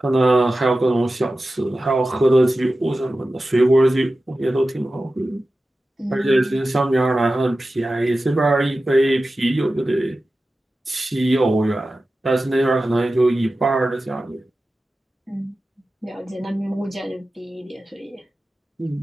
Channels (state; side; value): normal; both; correlation 0.94